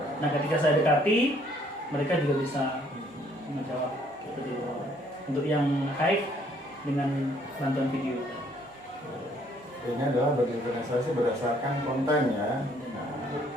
Nah, ketika saya dekati, mereka juga bisa menjawab. Untuk yang high dengan bantuan video. Ini adalah berdiferensiasi berdasarkan konten ya. Nah,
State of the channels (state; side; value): normal; both; correlation 0.64